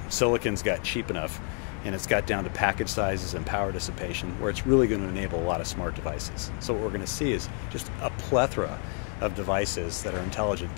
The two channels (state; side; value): quieter; right; 36.2 dB